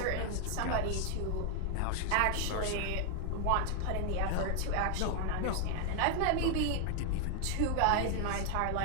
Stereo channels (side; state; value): both; different; correlation 0.00